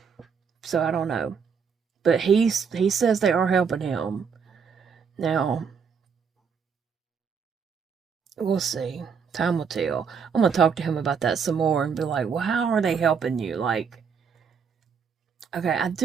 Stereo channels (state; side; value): quieter; left; 6.3 dB